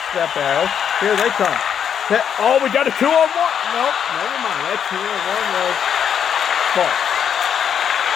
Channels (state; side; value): quieter; right; 8.3 dB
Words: that battle. Here they come. Oh, we got a 2-on-1. Nope, never mind. That 2-on-1 was false.